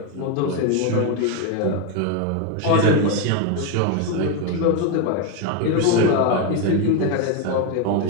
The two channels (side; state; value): both; different; correlation 0.02